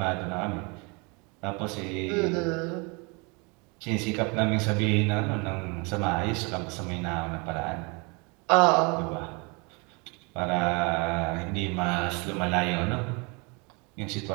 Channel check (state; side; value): quieter; left; 30.1 dB